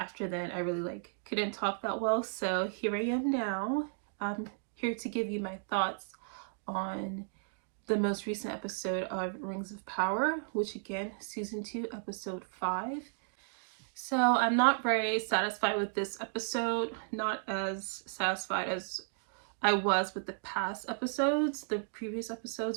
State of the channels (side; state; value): left; silent; digital silence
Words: then I really couldn't talk that well, so here I am now. I'm here to give you my thoughts on the most recent episode of Rings of Power, which again, season 2 episode 5. So I'm not very satisfied with this episode, not as satisfied as I was with the past episodes. The previous